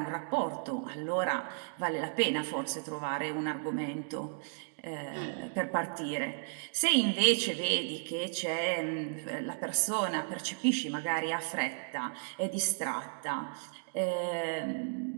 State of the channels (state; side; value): silent; left; digital silence